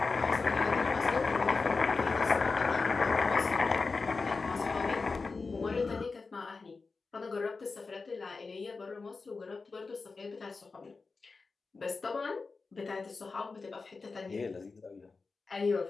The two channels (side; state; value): right; quieter; 4.2 dB